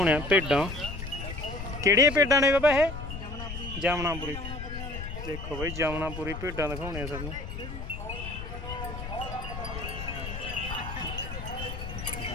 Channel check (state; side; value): noise; left; rumble, 8 dB below the sound